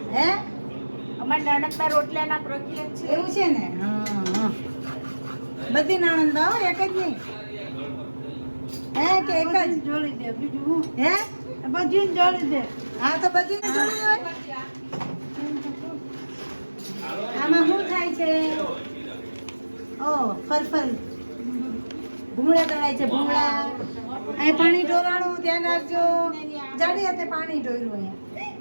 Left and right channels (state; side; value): inverted; both; correlation -1.00